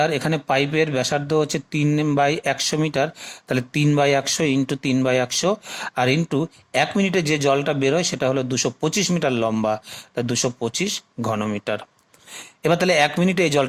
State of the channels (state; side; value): identical; both; correlation 1.00